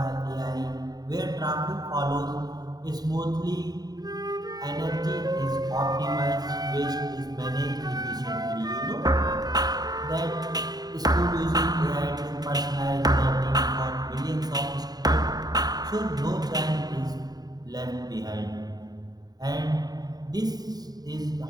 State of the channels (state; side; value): late; left; 0.19 ms